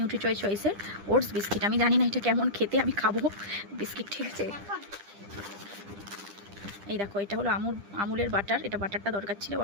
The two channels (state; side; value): late; left; 10 ms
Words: চয়েসের ওটস বিস্কিট। আমি জানি না এটা কেমন খেতে, আমি খাবো বিস্কিট, ঠিক আছে। এই দেখো এটা হলো আমুলের বাটার। এটা বাটারটা দরকার ছিল,